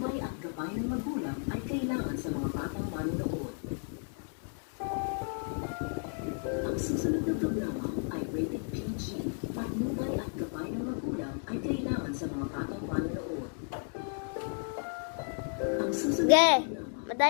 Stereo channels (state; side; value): silent; right; 56 dB below the other